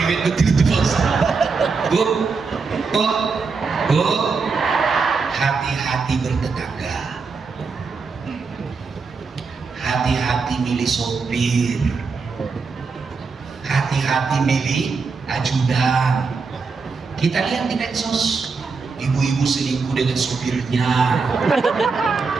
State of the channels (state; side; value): quieter; left; 4.7 dB